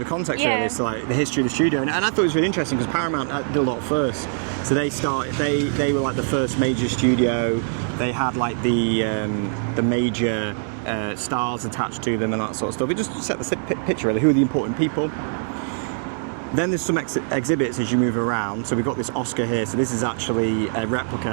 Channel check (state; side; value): silent; left; digital silence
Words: of a context, Yeah. really, to like the history of the studio, and I thought it was really interesting because Paramount did a lot first. So they were like the first major studio. They had like the major stars attached to them and that sort of stuff. It just set the picture, really. Who are the important people? Then there's some exhibits as you move around. So we've got this Oscar here. So this is actually a replica